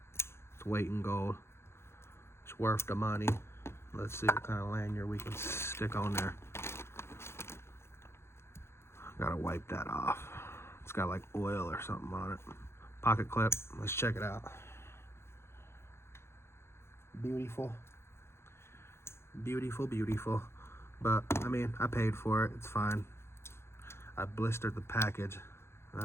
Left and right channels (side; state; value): right; late; 0.12 ms